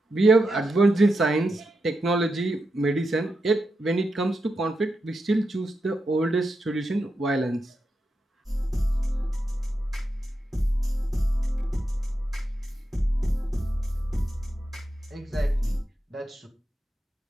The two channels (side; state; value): both; normal; correlation 0.87